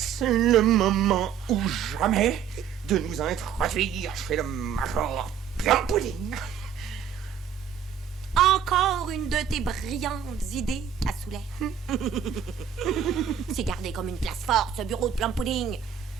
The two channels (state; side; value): quieter; left; 8.2 dB